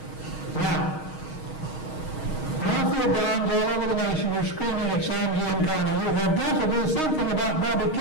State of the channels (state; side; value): late; right; 6.4 ms